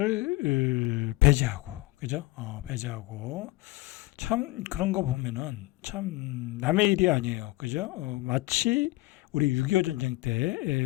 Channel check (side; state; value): right; quieter; 19.8 dB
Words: 배제하고, 그죠? 배제하고 참 그런 거 보면은 참 남의 일이 아니에요, 그죠? 마치 우리 6.25 전쟁 때